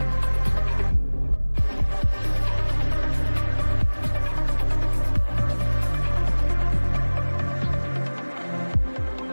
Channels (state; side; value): inverted; both; correlation -1.00